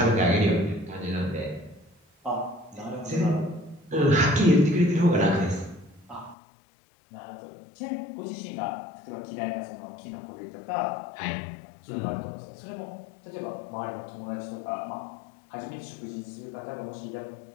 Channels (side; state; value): right; drops out; at 6.4 s